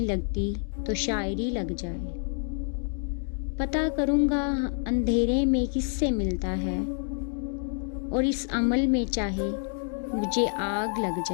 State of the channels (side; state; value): right; silent; 59 dB below the other